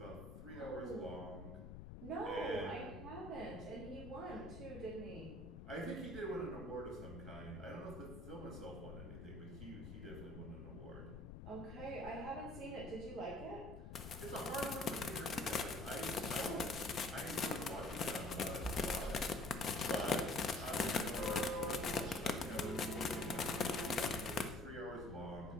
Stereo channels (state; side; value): noise; left; rumble, 10 dB below the sound